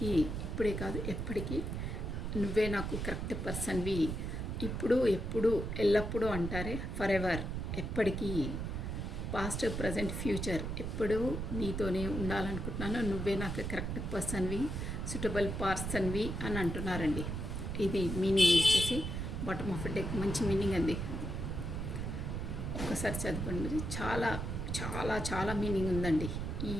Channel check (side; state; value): right; noise; rumble, 3 dB below the sound